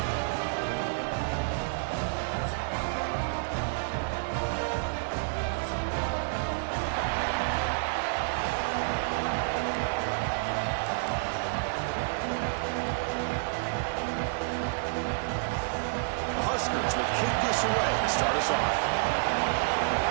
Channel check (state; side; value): silent; left; digital silence